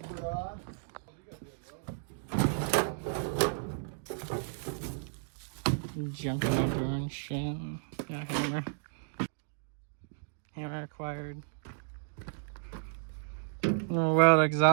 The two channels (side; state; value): left; silent; digital silence